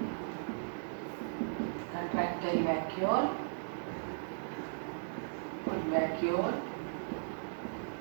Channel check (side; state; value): left; silent; digital silence